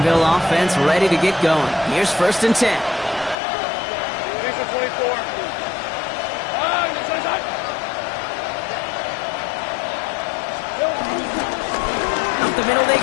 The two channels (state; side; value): drops out; right; at 3.4 s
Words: offense ready to get going. Here's 1st and 10. Up the middle they